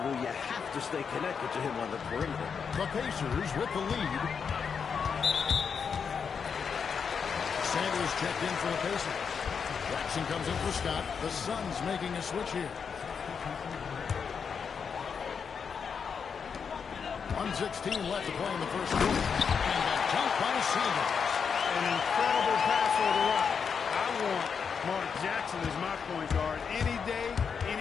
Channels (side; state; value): right; quieter; 6.3 dB